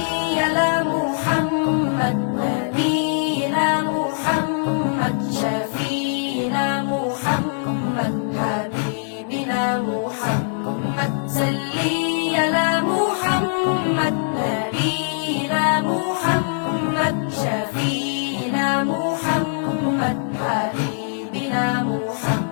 আলা মুহাম্মদ নবীনা মুহাম্মদ শফীনা মুহাম্মদ হাবিবিনা মুহাম্মদ। সাল্লি আলা মুহাম্মদ নবীনা মুহাম্মদ শফীনা মুহাম্মদ হাবিবিনা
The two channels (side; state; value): right; silent; digital silence